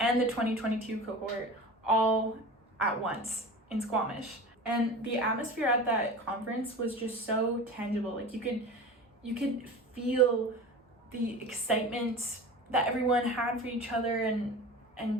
the 2022 cohort all at once in Squamish. And the atmosphere at that conference was just so tangible. Like you could feel the excitement that everyone had for each other,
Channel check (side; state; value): both; normal; correlation 0.33